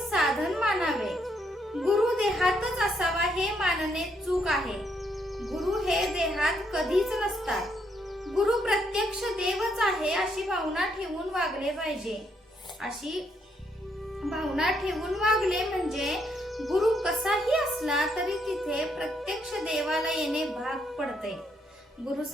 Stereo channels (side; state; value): both; normal; correlation 0.75